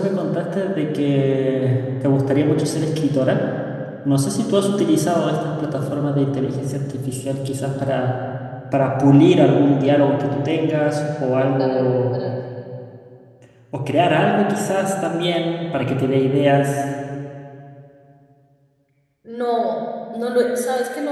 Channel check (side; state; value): both; identical; correlation 1.00